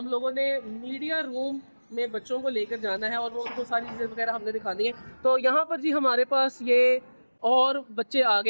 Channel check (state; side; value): inverted; both; correlation -1.00